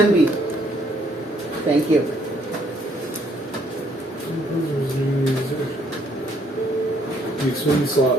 Thank you. The swing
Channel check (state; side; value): normal; both; correlation 0.67